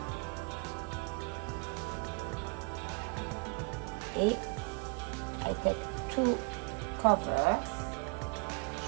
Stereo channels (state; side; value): quieter; left; 32.7 dB